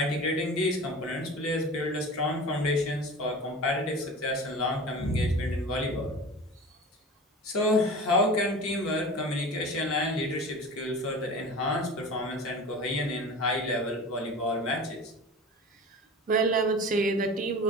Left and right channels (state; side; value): normal; both; correlation 0.35